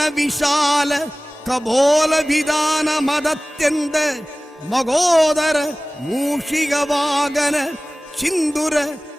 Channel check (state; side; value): normal; both; correlation 0.98